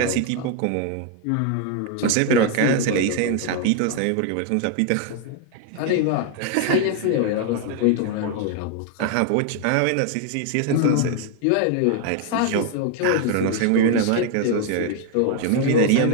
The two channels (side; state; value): both; different; correlation 0.00